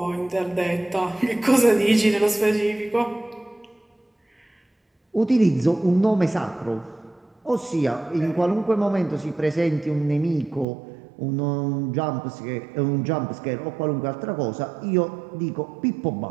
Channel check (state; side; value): drops out; left; at 10.7 s